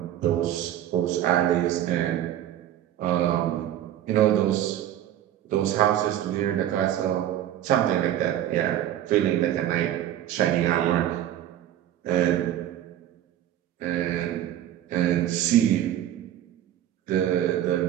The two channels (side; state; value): left; quieter; 11.9 dB